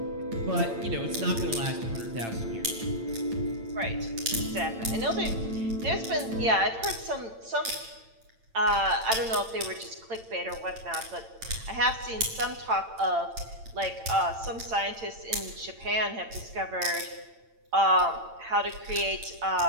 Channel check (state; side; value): late; left; 8.9 ms